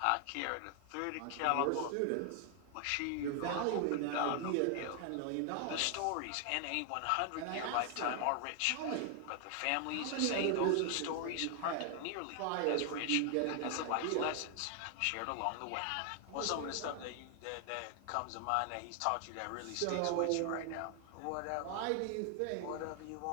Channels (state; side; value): different; both; correlation 0.00